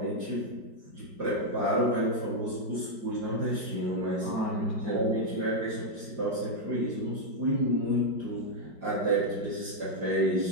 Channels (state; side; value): late; left; 4.9 ms